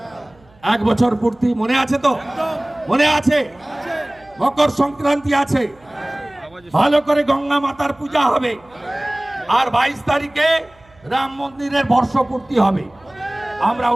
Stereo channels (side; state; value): right; noise; hum, 29 dB below the sound